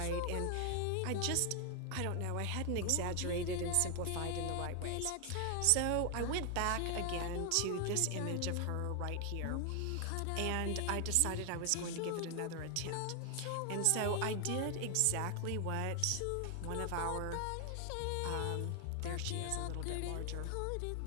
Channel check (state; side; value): different; both; correlation 0.00